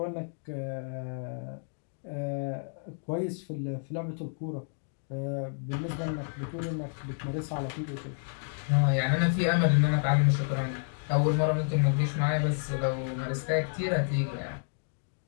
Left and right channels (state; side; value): silent; right; digital silence